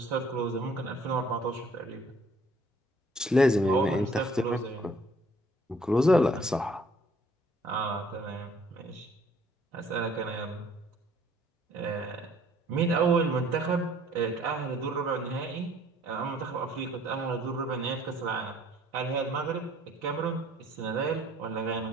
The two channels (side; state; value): both; normal; correlation 0.58